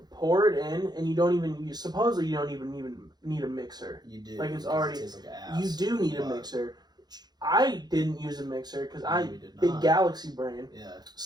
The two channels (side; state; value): left; late; 0.20 ms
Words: pour it in, and supposedly you don't even need a mixer. You do. Like, it's already. It tastes like ass, you do need a mixer. I didn't use a mixer because big galaxy brain. Yeah.